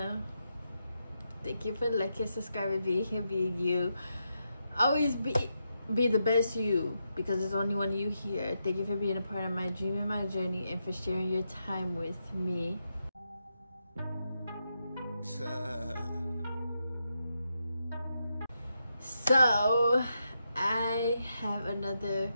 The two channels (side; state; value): both; inverted; correlation -0.84